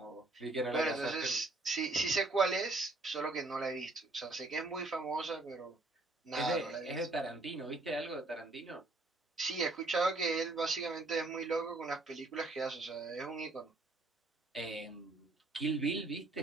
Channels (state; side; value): quieter; left; 3.1 dB